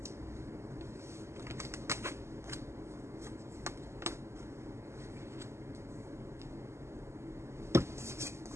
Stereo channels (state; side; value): late; left; 0.13 ms